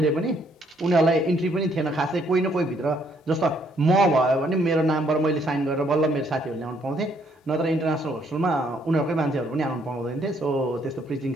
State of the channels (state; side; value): normal; both; correlation 0.68